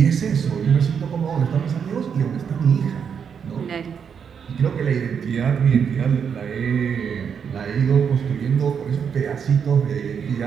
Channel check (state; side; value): quieter; left; 7.1 dB